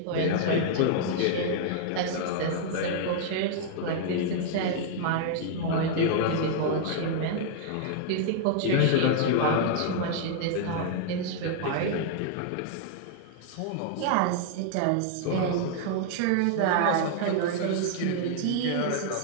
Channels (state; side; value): different; both; correlation 0.00